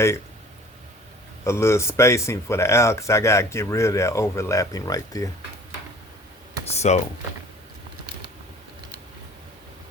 a little spacing for the owl because I gotta get rid of that overlapping right there. So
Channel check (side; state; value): both; normal; correlation 0.48